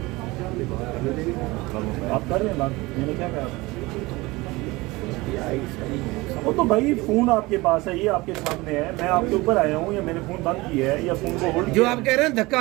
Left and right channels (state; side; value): quieter; left; 21.8 dB